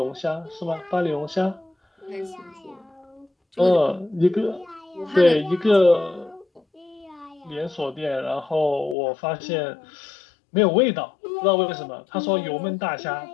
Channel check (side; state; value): right; drops out; at 9.0 s